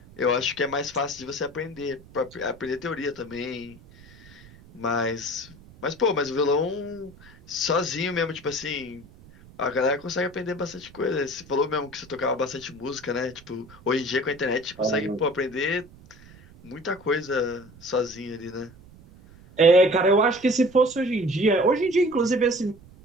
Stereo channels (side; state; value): right; noise; rumble, 23 dB below the sound